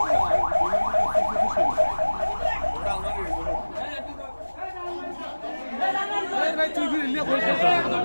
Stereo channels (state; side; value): inverted; both; correlation -1.00